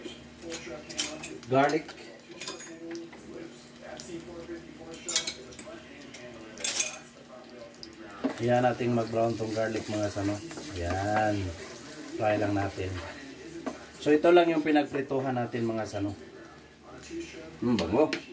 garlic. Hayaan nating mag-brown tong garlic mga sano. Ayan. Try lang natin. So ito lang yung pinagprituhan natin mga sano. Bango.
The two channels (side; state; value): both; identical; correlation 1.00